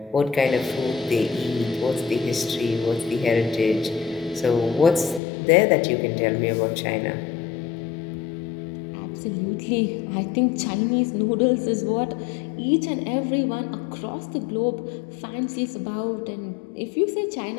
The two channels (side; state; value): right; drops out; at 5.2 s